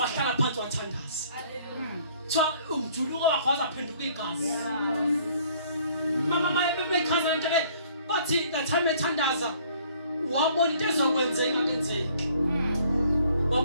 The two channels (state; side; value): inverted; both; correlation -0.59